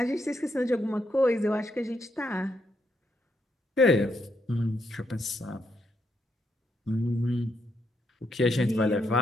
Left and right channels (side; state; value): both; normal; correlation 0.79